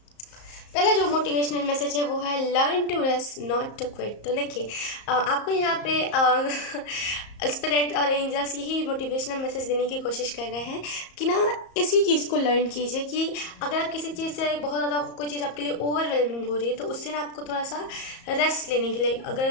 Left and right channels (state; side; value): late; right; 34 ms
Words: पहला जो मोटिवेशनल मैसेज है वो है learn to rest not to quit. तो देखिए आपको यहाँ पे स्पिरिट और एंजल्स यही मोटिवेशनल मैसेज देने की कोशिश कर रहे हैं कि ना इसी चीज़ को लर्न कीजिए कि अगर आप किसी चीज़ से बहुत ज़्यादा कोई चीज़ आपके लिए ओवरवेलमिंग हो रही है, तो उससे ना आपको थोड़ा सा रेस्ट लेने के लिए,